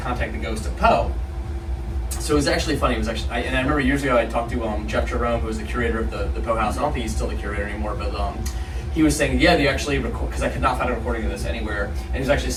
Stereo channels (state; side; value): identical; both; correlation 1.00